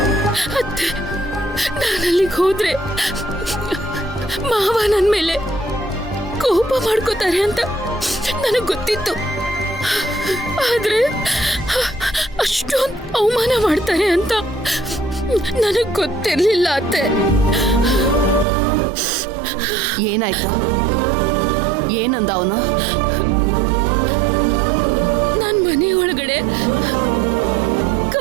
ನಾನಲ್ಲಿಗೆ ಹೋದ್ರೆ ಮಾವ ನನ್ನ ಮೇಲೆ ಕೋಪ ಮಾಡ್ಕೋತಾರೆ ಅಂತ ನನಗೆ ಗೊತ್ತಿತ್ತು. ಆದ್ರೆ ಅಷ್ಟೊಂದು ಅವಮಾನ ಮಾಡ್ತಾರೆ ಅಂತ ನನಗೆ ಗೊತ್ತಿರ್ಲಿಲ್ಲ ಅತ್ತೆ. ಏನಾಯ್ತು? ಏನಂದ ಅವನು? ನಾನು ಮನೆ ಒಳಗಡೆ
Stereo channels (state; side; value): drops out; left; at 18.4 s